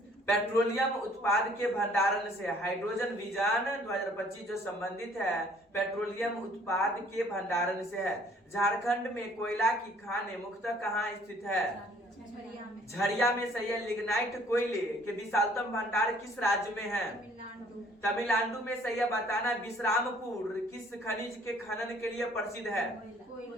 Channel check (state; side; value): normal; both; correlation 0.59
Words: पेट्रोलियम उत्पाद के भंडारण से। हाइड्रोजन विजन 2025 जो संबंधित है पेट्रोलियम उत्पाद के भंडारण से है। झारखंड में कोयला की खानें मुख्यतः कहाँ स्थित है? झरिया में। झरिया में। सही है। लिग्नाइट कोयले के विशालतम भंडार किस राज्य में है? तमिलनाडु। तमिलनाडु में। सही है। बताना विश्रामपुर किस खनिज के खनन के लिए प्रसिद्ध है?